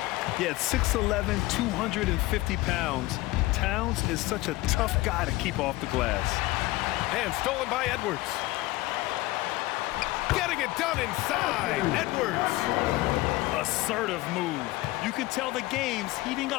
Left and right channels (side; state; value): right; quieter; 19.2 dB